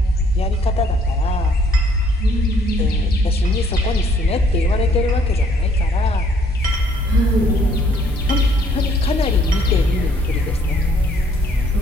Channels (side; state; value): both; normal; correlation 0.63